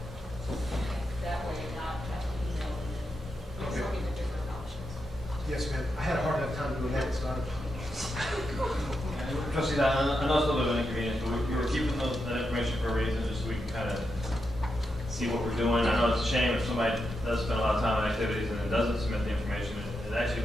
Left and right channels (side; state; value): both; normal; correlation 0.85